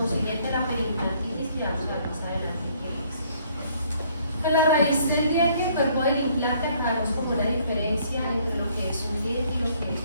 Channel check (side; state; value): both; inverted; correlation -0.63